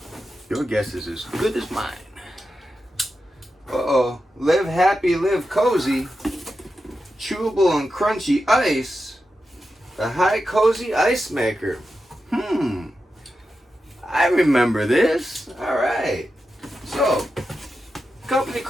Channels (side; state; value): both; normal; correlation 0.90